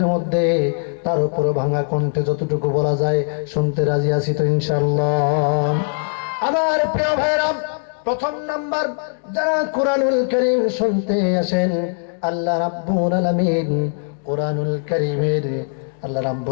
মধ্যে। তার উপরে ভাঙা কণ্ঠে যতটুকু বলা যায় শুনতে রাজি আছি তো ইনশাআল্লাহ। আমার প্রিয় ভাইরা, প্রথম নাম্বার, যারা কোরআনুল কারীম শুনতে আসেন, আল্লাহ রাব্বুল আলামিন কোরআনুল কারীমের আল্লাহ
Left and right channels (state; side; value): silent; right; 60 dB below the other